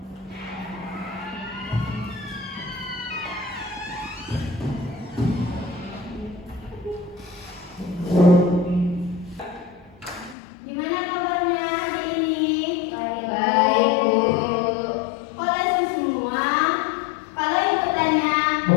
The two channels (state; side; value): drops out; right; at 10.4 s